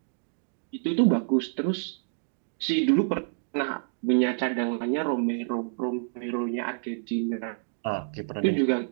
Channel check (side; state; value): left; silent; digital silence